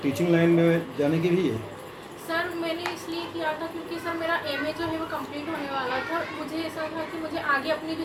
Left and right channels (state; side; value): identical; both; correlation 1.00